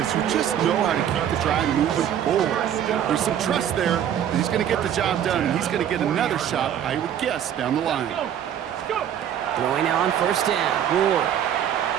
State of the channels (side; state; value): left; quieter; 9.8 dB